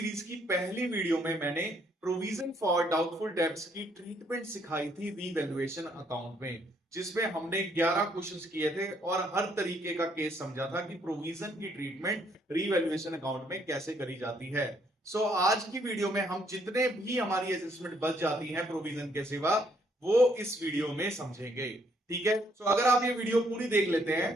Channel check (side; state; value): both; normal; correlation 0.69